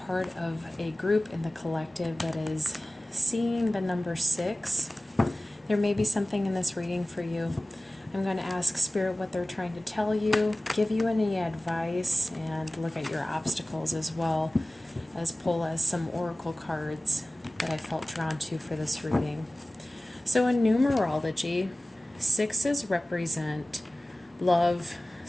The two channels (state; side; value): normal; both; correlation 0.97